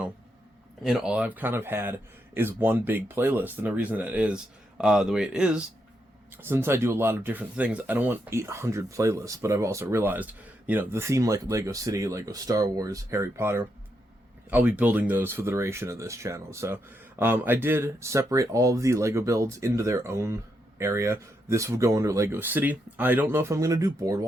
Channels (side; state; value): both; normal; correlation 0.81